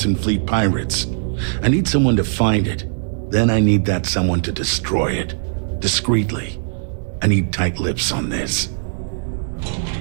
Fleet pirates. I need someone to find it. Then I need that someone to destroy it. Discreetly. I need tight lips on this.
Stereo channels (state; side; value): silent; left; digital silence